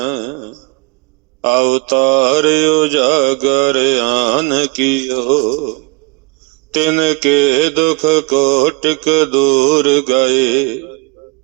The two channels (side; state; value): left; quieter; 26.8 dB